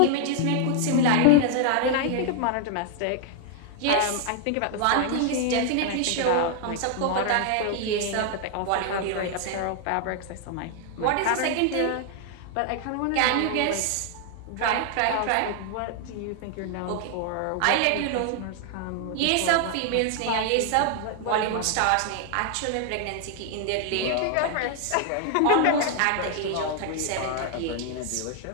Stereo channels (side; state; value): both; different; correlation 0.00